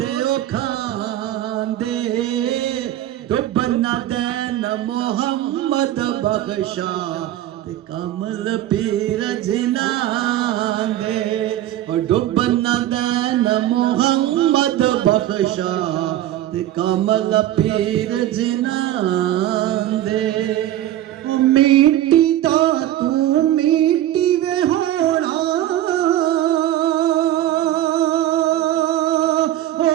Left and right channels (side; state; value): left; quieter; 13.2 dB